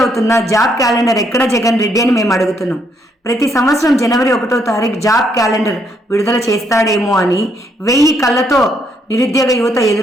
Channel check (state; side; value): normal; both; correlation 0.72